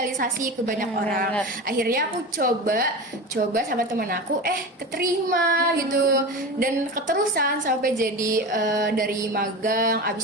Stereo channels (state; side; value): normal; both; correlation 0.27